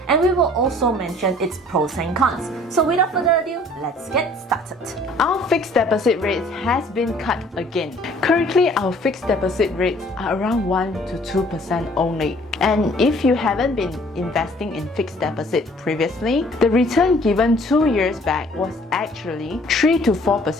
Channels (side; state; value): both; normal; correlation 0.55